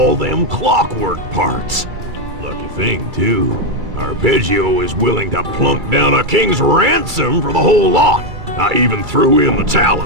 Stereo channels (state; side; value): late; left; 2.3 ms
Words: them clockwork parts. Lucky thing, too. Arpeggio is willing to plunk down a king's ransom for the whole lot. I even threw in the